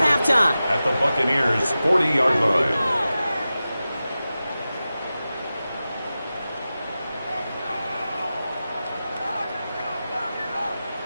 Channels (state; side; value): inverted; both; correlation -0.94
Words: halftime. At the Buccaneers' 40-yard line.